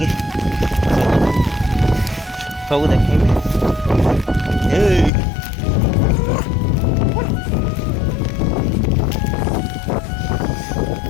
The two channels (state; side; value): drops out; right; at 5.1 s